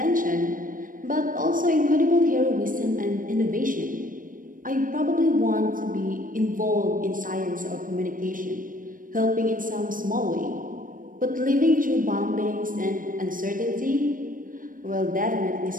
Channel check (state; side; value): late; left; 0.40 ms